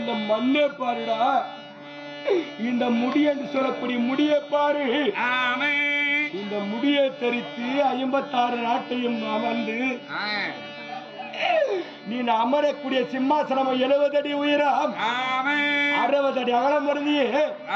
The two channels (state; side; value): identical; both; correlation 1.00